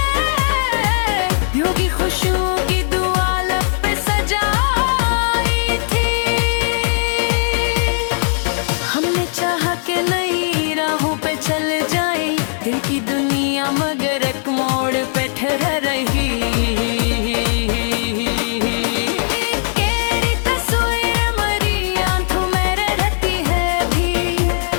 यूं की खुशियों की दुआ लब पे सजाई थी। हमने चाहा कि नई राहों पे चल जाए, दिल की दुनिया मगर एक मोड़ पे ठहर रही। तेरी तस्वीर मरी आंखों में रहती है भी,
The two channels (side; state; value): right; silent; digital silence